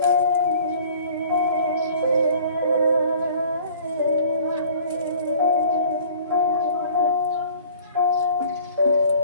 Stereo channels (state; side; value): inverted; both; correlation -0.50